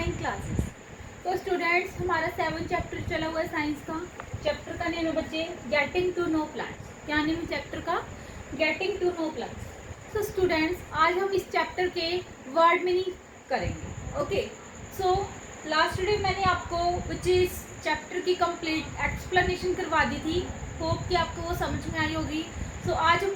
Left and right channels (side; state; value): both; identical; correlation 1.00